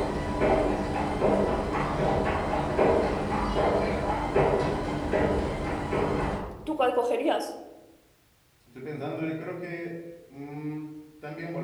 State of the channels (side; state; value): both; identical; correlation 1.00